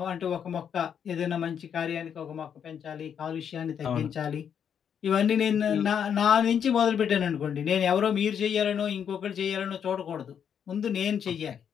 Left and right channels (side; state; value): right; quieter; 8.1 dB